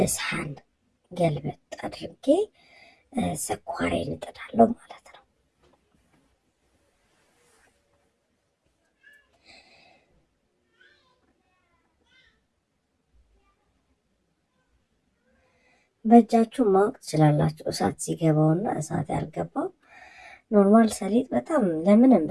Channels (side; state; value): both; identical; correlation 1.00